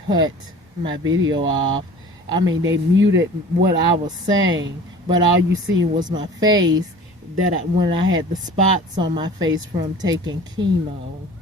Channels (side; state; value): both; normal; correlation 0.43